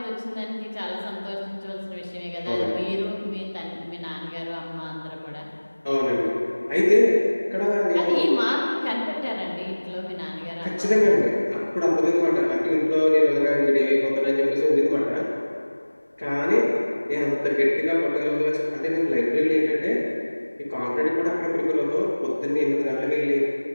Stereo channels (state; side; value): inverted; both; correlation -1.00